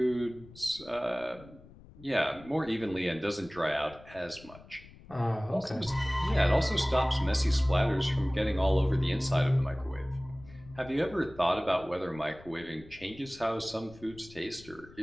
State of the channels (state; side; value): noise; left; rumble, 21 dB below the sound